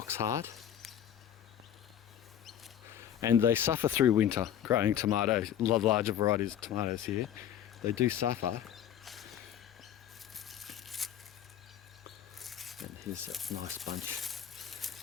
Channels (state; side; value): quieter; right; 10.3 dB